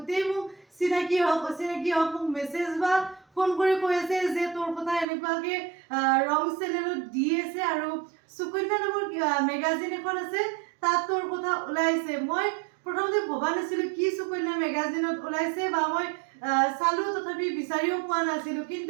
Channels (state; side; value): drops out; left; at 5.1 s